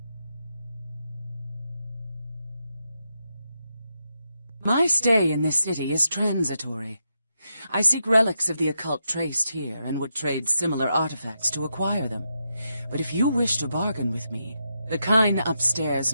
My stay in this city is transitory. I seek relics of the occult traced here and would trade similar artifacts to acquire them. But if you wish to bargain with me, the kind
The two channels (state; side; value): inverted; both; correlation -0.85